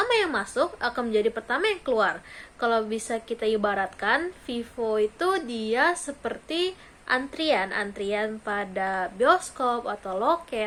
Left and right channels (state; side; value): identical; both; correlation 1.00